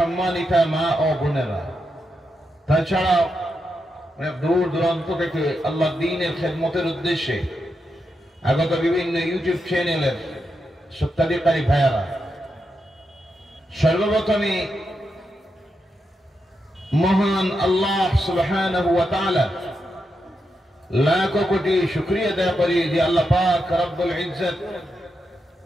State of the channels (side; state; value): both; normal; correlation 0.85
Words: মা ও বোনেরা, তাছাড়া দূর দূরান্ত থেকে আল্লাহ দ্বীনের খেদমতের উদ্দেশ্যে আগত বিভিন্ন ইউটিউব চ্যানেলের সত্যাধিকারী ভাইয়ারা, সর্বপ্রথমে মহান আল্লাহ সুবহানাহু ওয়া তাআলা লাখ কোটি শুকরিয়া আদায় করি যে আল্লাহ পাক রব্বুল ইজ্জত